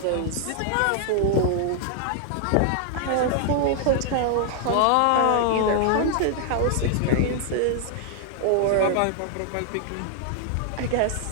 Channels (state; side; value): different; both; correlation 0.00